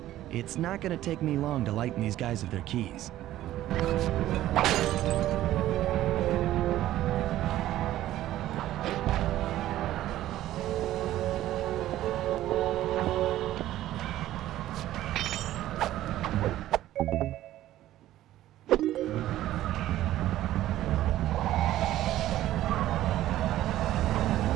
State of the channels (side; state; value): left; quieter; 14.0 dB